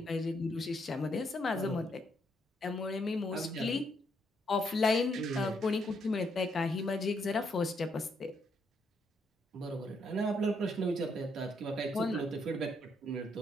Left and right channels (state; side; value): normal; both; correlation 0.75